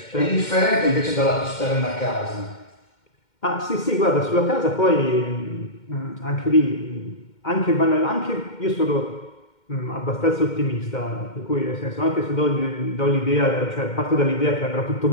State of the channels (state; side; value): late; right; 2.1 ms